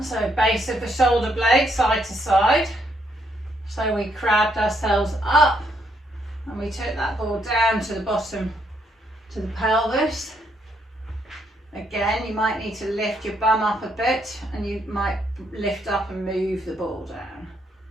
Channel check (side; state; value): both; normal; correlation 0.74